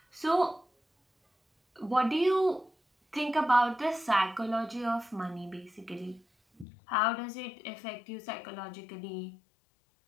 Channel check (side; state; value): right; drops out; at 6.7 s